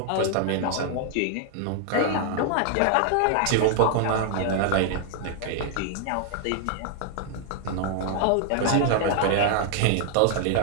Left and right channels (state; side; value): different; both; correlation 0.00